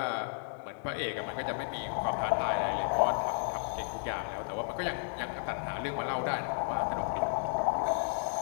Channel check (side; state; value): right; silent; 56 dB below the other